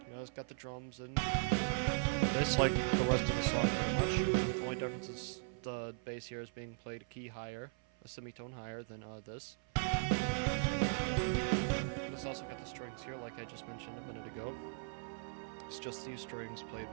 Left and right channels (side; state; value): left; silent; 52 dB below the other